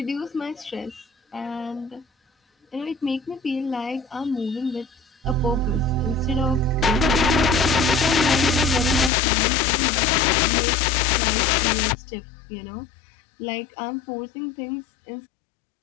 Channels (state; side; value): drops out; right; at 9.1 s